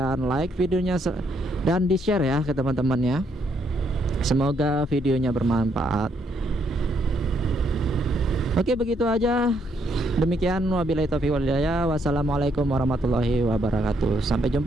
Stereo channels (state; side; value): normal; both; correlation 0.73